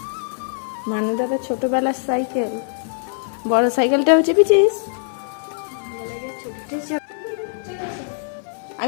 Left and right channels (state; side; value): silent; right; 57 dB below the other